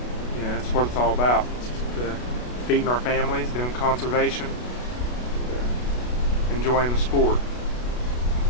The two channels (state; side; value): late; right; 33 ms